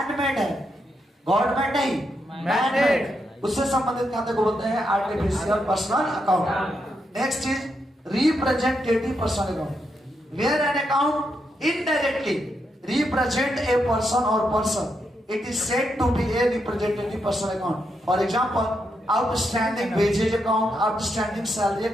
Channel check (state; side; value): normal; both; correlation 0.82